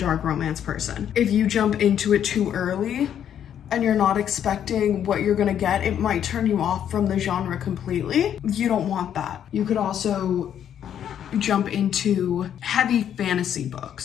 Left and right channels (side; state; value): right; quieter; 9.5 dB